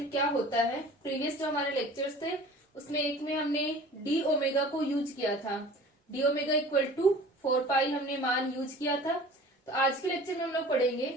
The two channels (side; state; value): both; normal; correlation 0.44